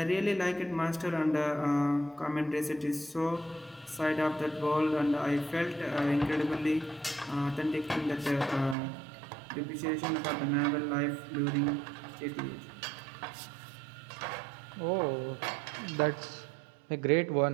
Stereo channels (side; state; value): left; drops out; at 8.8 s